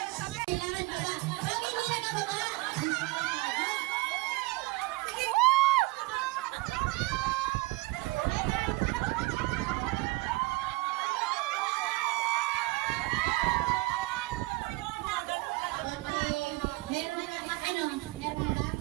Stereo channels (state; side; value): quieter; left; 22.1 dB